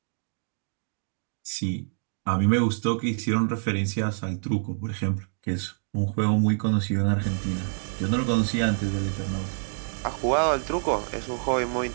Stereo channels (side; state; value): left; silent; digital silence